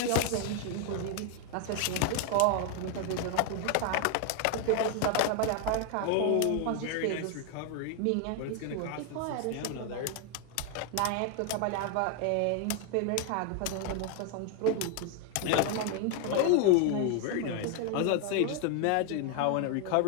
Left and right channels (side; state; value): both; different; correlation 0.00